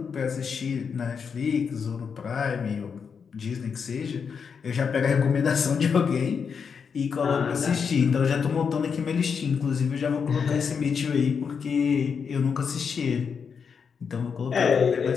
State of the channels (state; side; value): quieter; right; 6.3 dB